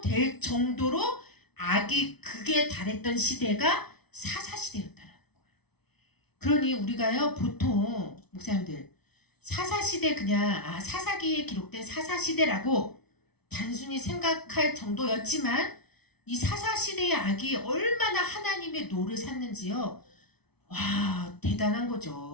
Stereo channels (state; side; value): late; right; 0.98 ms